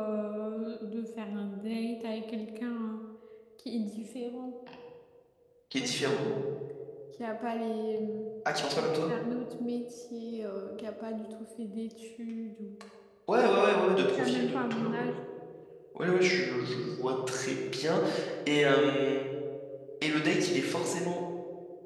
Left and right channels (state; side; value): identical; both; correlation 1.00